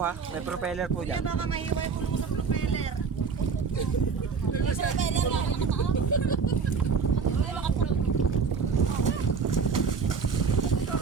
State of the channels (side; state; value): left; quieter; 5.5 dB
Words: ha. May propeller po dyan. Baka mahiway ko sa propeller.